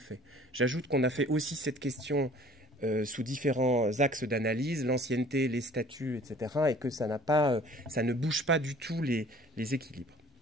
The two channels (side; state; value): both; normal; correlation 0.51